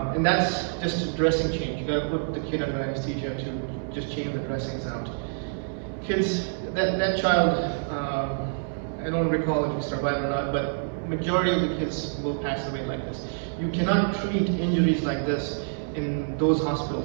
And that's just a dressing change. You gotta put the kid under anesthesia to just change the dressings out. Kids, that child, I don't recall if he survived or not, but majority of the kids will pass away like this. You cannot treat injuries like this in those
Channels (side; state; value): left; silent; digital silence